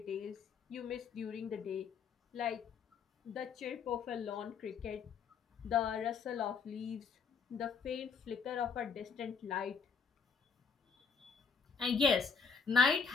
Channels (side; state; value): right; quieter; 5.7 dB